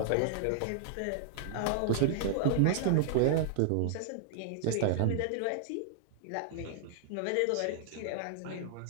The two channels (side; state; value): both; different; correlation 0.00